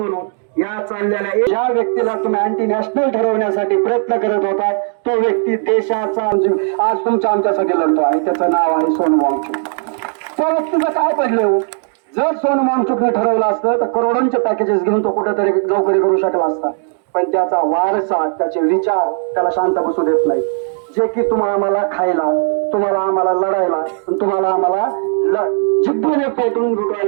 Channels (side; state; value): left; silent; 56 dB below the other